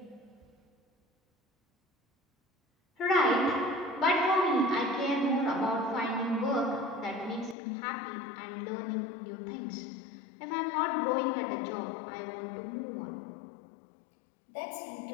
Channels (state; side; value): drops out; right; at 7.6 s